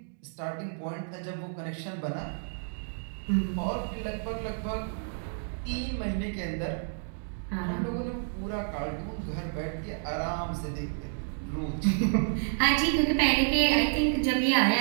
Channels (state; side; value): silent; left; digital silence